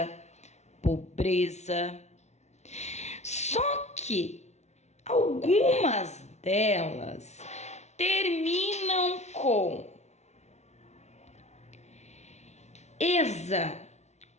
pobreza. Só que algumas delas terminam com ESA,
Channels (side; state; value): right; late; 0.32 ms